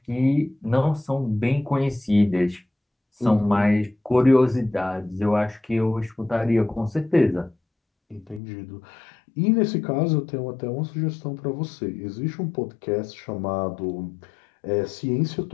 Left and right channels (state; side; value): drops out; right; at 8.4 s